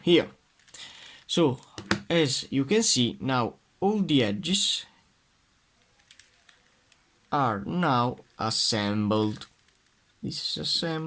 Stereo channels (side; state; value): both; identical; correlation 1.00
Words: here. So as you can see, now all the edges are now assembled. This is